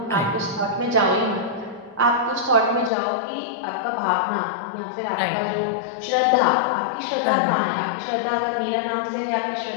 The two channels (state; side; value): drops out; right; at 2.9 s